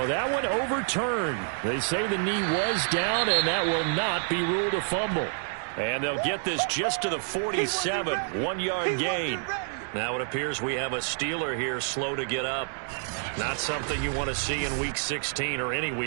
that one overturned. They say the knee was down, and that will not be ruled a fumble. And they'll get this just to the 47, 1-yard gain. Now it appears we have a Steeler here slow to get up. Not something you want to see in Week 16 or any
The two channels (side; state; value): left; silent; 59 dB below the other